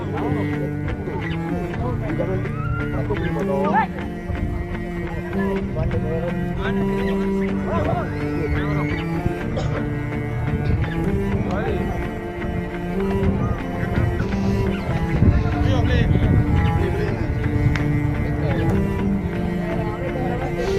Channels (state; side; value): identical; both; correlation 1.00